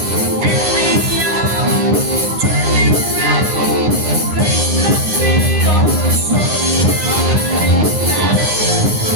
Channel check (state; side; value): late; left; 9.7 ms